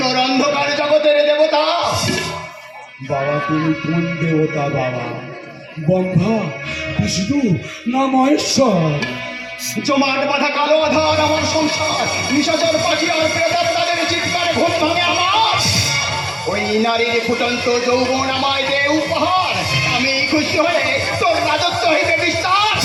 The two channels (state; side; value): identical; both; correlation 1.00